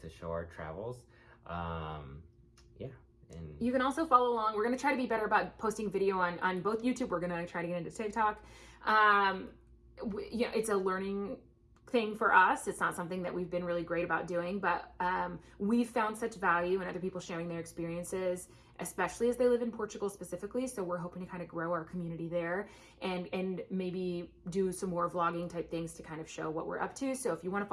show our travels. Yeah. And you can also follow along. We're going to try to be better about posting video on both YouTube. We're going to try to get into TikTok. It's a learning thing for us. It's not something that we've been really great about doing, but we've found such value in other people sharing their experiences, especially as they live in Portugal specifically. So we're hoping to kind of grow our community there and maybe do some more vlogging type things to kind of show what we're up to. So if you want to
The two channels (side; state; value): both; identical; correlation 1.00